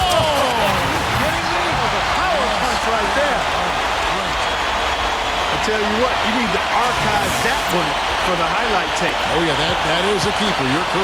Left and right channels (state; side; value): identical; both; correlation 1.00